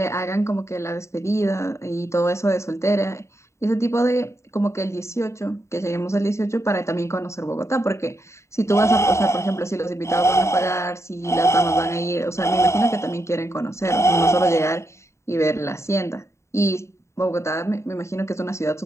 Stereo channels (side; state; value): right; late; 0.14 ms